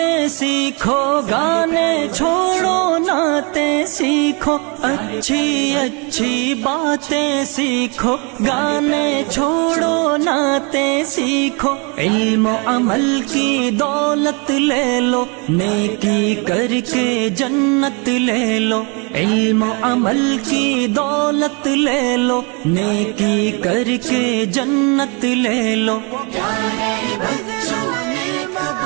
سیکھو، گانے چھوڑو نعتیں سیکھو، اچھی اچھی باتیں سیکھو، گانے چھوڑو نعتیں سیکھو، علم و عمل کی دولت لے لو، نیکی کر کے جنت لے لو، علم و عمل کی دولت لے لو، نیکی کر کے جنت لے لو، پیارے بچوں نیک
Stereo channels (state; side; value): quieter; left; 32.6 dB